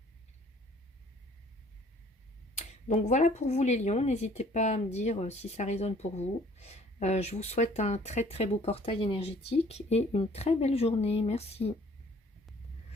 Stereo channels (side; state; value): both; normal; correlation 0.56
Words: Donc voilà pour vous les lions, n'hésitez pas à me dire si ça résonne pour vous. Je vous souhaite un très très beau portail énergétique et une très belle journée. Merci.